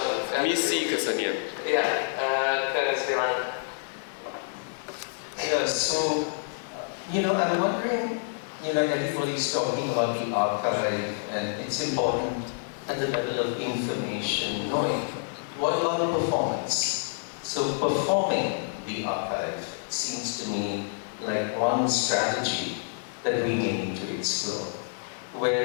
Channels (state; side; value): silent; right; digital silence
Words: Misi kesenian. Iya, ke Sri Lanka. Yeah, so, I'm wondering, everybody's talking about the archive, and it's important at the level of information, knowing what about performance? So performing the archive seems to me like one strategy that we need to explore, where